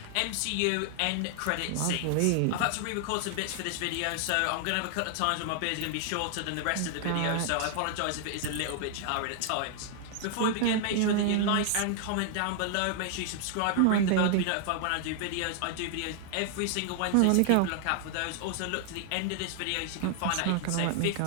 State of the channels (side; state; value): both; different; correlation 0.00